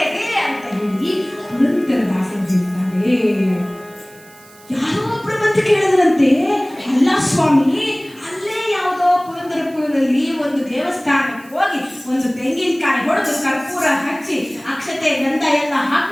ಅಂತ ಹೇಳಿ ಪುರಂದರದಾಸರು ಹೇಳ್ತಾರೆ. ಯಾರೋ ಒಬ್ಬರು ಬಂದು ಕೇಳಿದ್ರಂತೆ, ಅಲ್ಲ ಸ್ವಾಮಿ, ಅಲ್ಲೇ ಯಾವುದೋ ಪುರಂದರಪುರದಲ್ಲಿ ಒಂದು ದೇವಸ್ಥಾನಕ್ಕೆ ಹೋಗಿ ಒಂದು ತೆಂಗಿನಕಾಯಿ ಹೊಡೆದು ಕರ್ಪೂರ ಹಚ್ಚಿ ಅಕ್ಷತೆ ಗಂಧ ಎಲ್ಲ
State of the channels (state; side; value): noise; right; hiss, 25 dB below the sound